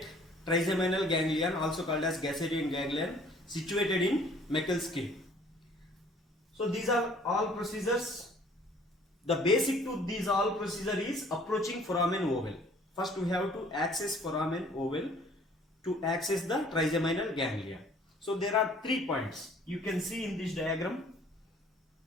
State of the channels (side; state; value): both; normal; correlation 0.55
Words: trigeminal ganglion, also called as Gasseterian ganglion, situated in Meckel's skin. So these are all procedures. The basic to these all procedure is approaching foramen oval. First we have to access foramen oval to access the trigeminal ganglia. So there are 3 points. You can see in this diagram.